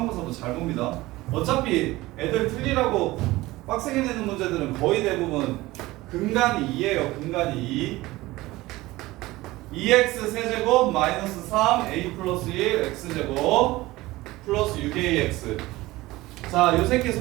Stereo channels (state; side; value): quieter; left; 19.0 dB